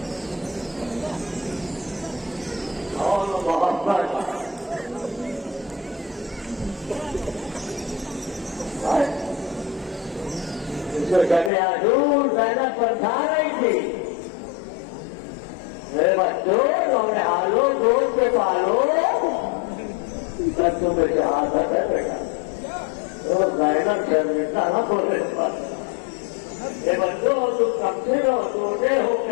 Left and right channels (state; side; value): drops out; right; at 11.5 s